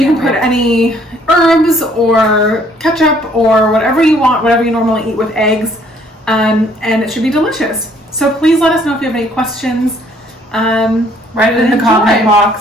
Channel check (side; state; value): both; normal; correlation 0.63